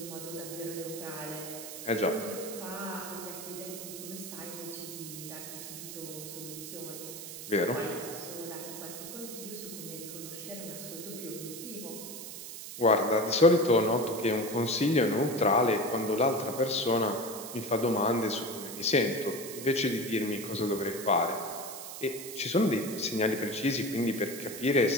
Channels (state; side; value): noise; right; hiss, 10 dB below the sound